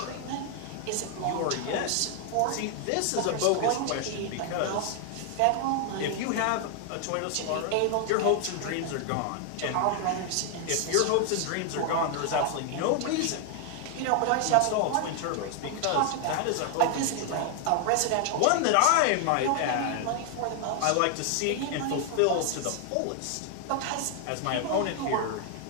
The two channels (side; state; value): both; different; correlation 0.00